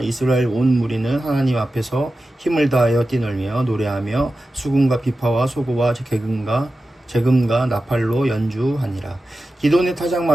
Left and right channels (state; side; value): normal; both; correlation 0.93